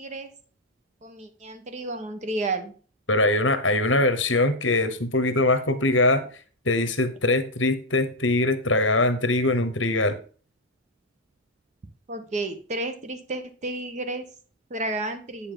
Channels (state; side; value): normal; both; correlation -0.01